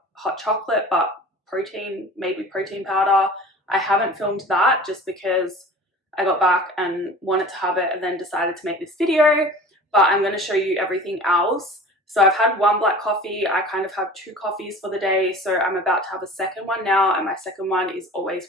hot chocolate, but protein, made with protein powder. I haven't filmed that just because I got back and wanted to have it and then decided to make this video, but I'm going to show you everything else. So I've had one black coffee. I kind of have 2 coffees for the day, so I'm about to have a second one now, and my second one is always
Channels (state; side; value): normal; both; correlation 0.40